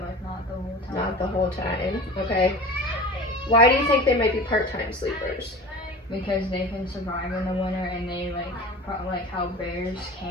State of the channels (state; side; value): normal; both; correlation 0.35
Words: like not the whole time. Not the whole time. Okay. Why do you think they might be part-time sleepers? Because they can survive in the winter, and they like how bears